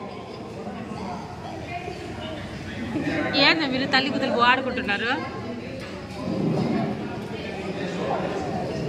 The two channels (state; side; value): identical; both; correlation 1.00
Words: ఏంది మీరు తల్లి కుదలు ఆడుకుంటున్నారు